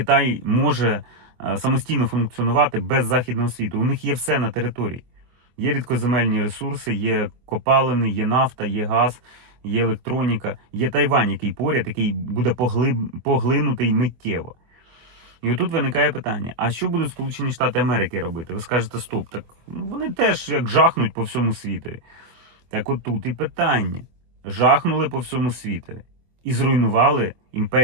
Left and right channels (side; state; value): left; late; 24 ms